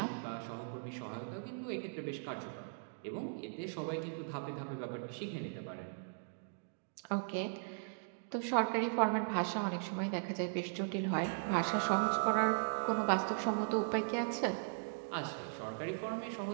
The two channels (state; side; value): silent; left; digital silence